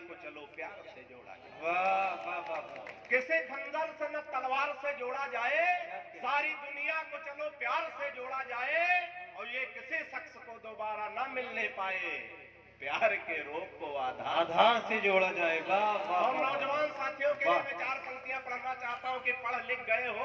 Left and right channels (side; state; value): both; identical; correlation 1.00